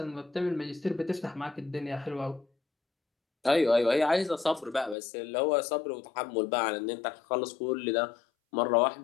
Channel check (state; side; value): drops out; right; at 5.0 s